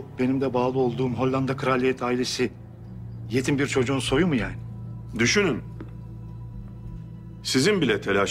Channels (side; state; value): both; identical; correlation 1.00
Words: benim de bağlı olduğum Hollanda kraliyet ailesi yetim bir çocuğun soyu mu yani? Düşünün. Sizin bile